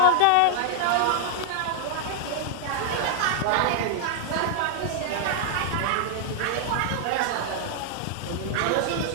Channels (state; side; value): different; both; correlation 0.00